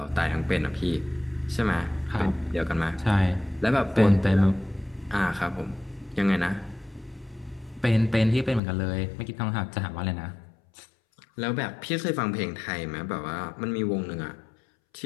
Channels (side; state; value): right; drops out; at 8.6 s